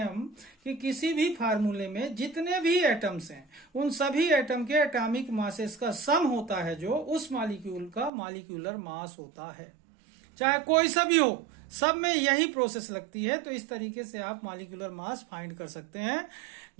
हम कि किसी भी फार्मूले में जितने भी एटम्स हैं उन सभी एटम के एटॉमिक मासेस का सम होता है जो उस मॉलिक्यूल का मॉलिक्यूलर मास होता है, चाहे कोई सा भी हो, सब में यही प्रोसेस लगती है। तो इस तरीके से आप मॉलिक्यूलर मास फाइंड कर सकते हैं,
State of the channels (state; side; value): drops out; left; at 8.1 s